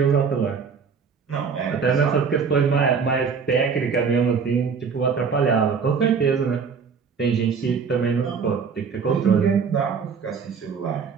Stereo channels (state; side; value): quieter; left; 5.9 dB